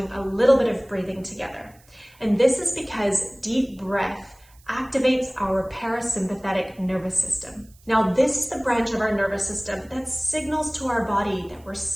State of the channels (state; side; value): noise; right; hiss, 29 dB below the sound